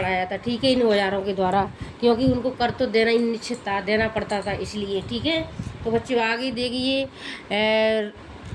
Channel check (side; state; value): both; identical; correlation 1.00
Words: था। ठीक है, इन औजारों के द्वारा, क्योंकि उनको कर तो देना ही निश्चित था, देना पड़ता था इसलिए। ठीक है, तो बच्चों आगे देखिए।